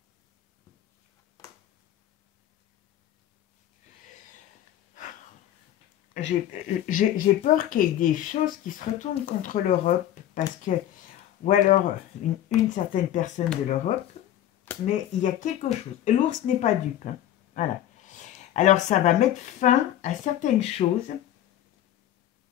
J'ai peur qu'il y ait des choses qui se retournent contre l'Europe, parce que, ou alors une certaine personne de l'Europe, mais il y a quelque chose. L'ours n'est pas dupe. Hein. Voilà. Alors ça va mettre fin à certaines choses.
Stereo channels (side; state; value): right; quieter; 12.1 dB